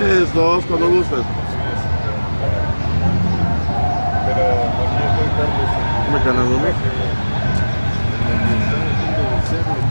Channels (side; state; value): both; inverted; correlation -1.00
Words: 2, cuando gustes. Pero aquí estoy Carlos. Dime canal 1.